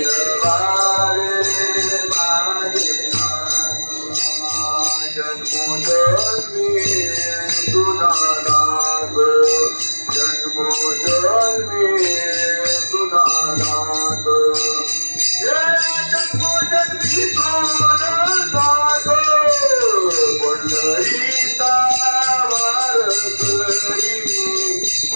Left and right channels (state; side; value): inverted; both; correlation -1.00